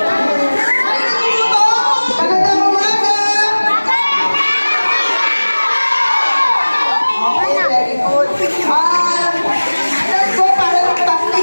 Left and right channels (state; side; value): inverted; both; correlation -1.00